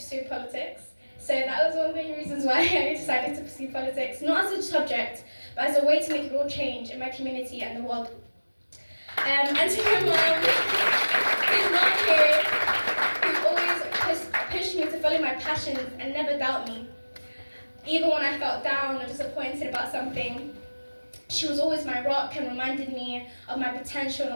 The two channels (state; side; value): inverted; both; correlation -1.00